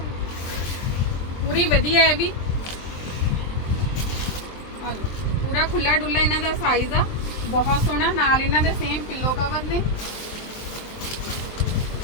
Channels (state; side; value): late; right; 23 ms